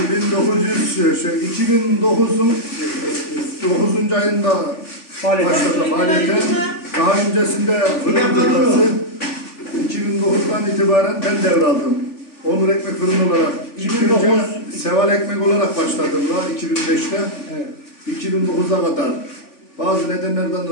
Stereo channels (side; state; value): right; late; 3.4 ms